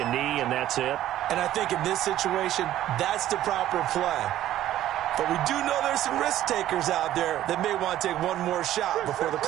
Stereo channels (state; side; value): quieter; left; 13.1 dB